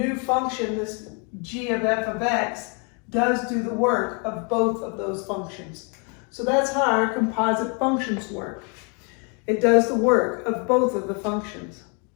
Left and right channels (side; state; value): right; quieter; 36.1 dB